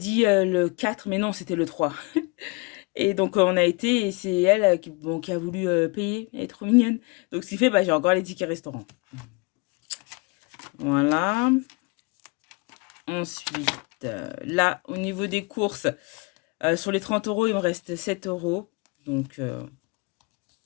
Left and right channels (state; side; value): quieter; right; 28.8 dB